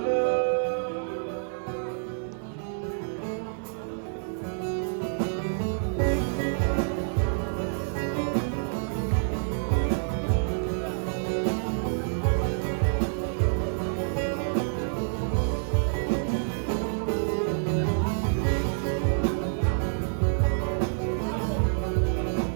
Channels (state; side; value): silent; left; digital silence